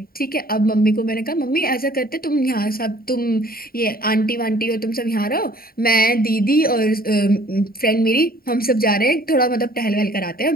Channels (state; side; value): late; right; 0.43 ms